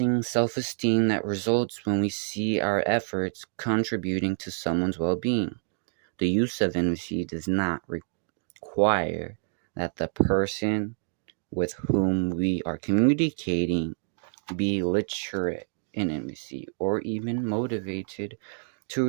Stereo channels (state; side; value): silent; left; 60 dB below the other